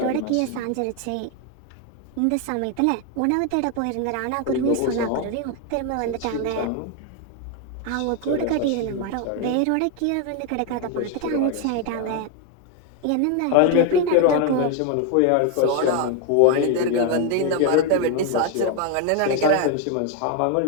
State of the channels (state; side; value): different; both; correlation 0.01